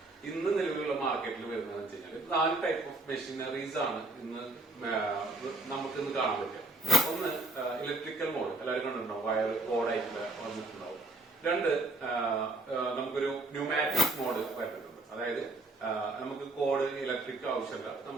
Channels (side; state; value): left; quieter; 3.1 dB